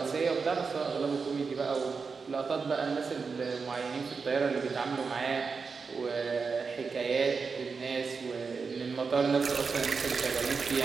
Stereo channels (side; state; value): left; quieter; 5.0 dB